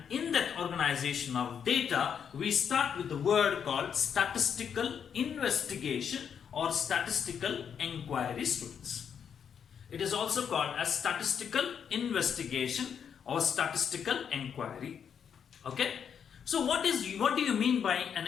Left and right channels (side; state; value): right; quieter; 7.6 dB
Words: in that organization of data, we start with the word called statistical investigation or statistical inquiry, students. It is also called as statistical investigation or statistical inquiry. Okay. So what do you mean by an